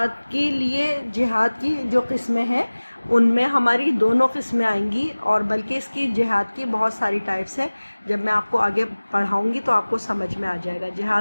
की जो किस्में हैं उनमें हमारी दोनों किस्में आएंगी और बल्कि इसकी जिहाद की बहुत सारी टाइप्स हैं। जब मैं आपको आगे पढ़ाऊंगी तो आपको समझ में आ जाएगा।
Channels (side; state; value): both; inverted; correlation -1.00